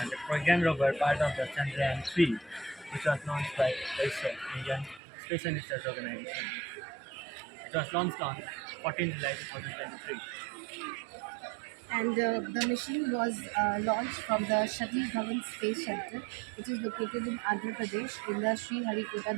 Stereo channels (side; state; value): left; drops out; at 5.0 s